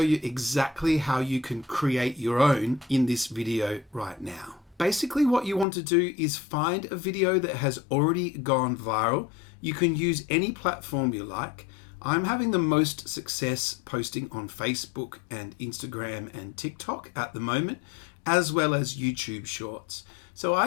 exactly how you can create your own in this video right now. Basically, what you want to do is find a video that has already gone viral. You can use any platform you like. I'm having the most success posting on Facebook and Instagram and TikTok at the moment, as well as YouTube Shorts. So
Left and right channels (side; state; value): right; drops out; at 5.7 s